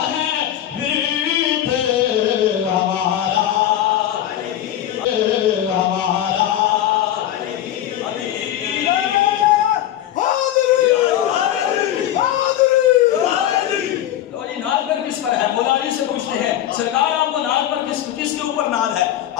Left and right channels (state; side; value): quieter; right; 12.1 dB